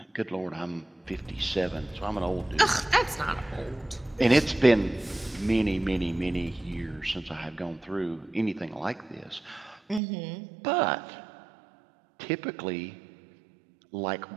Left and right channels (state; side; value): drops out; left; at 10.0 s